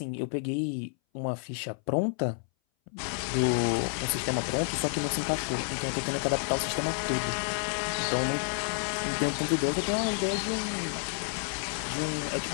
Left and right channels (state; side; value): silent; right; 58 dB below the other